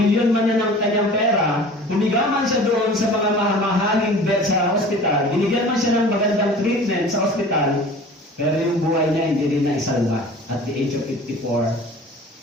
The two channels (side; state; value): both; normal; correlation 0.42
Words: man na ng kanyang pera, humiga man siya doon sa mga mahaling bed sa ospital, binigyan man siya ng magandang treatment sa ospital, pero yung buhay niya hindi rin na isalba. At the age of 54,